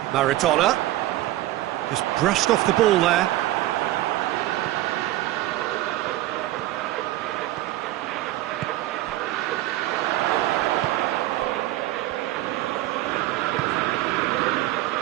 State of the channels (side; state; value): left; quieter; 15.9 dB